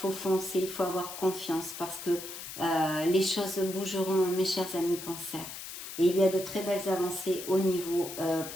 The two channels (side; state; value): left; noise; hiss, 10 dB below the sound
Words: foncer, il faut avoir confiance parce que les choses bougeront, mes chers amis cancer. Et il y a de très belles avancées au niveau